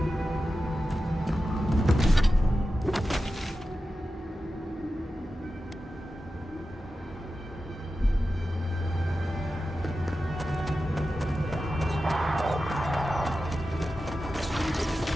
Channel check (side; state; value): both; normal; correlation 0.92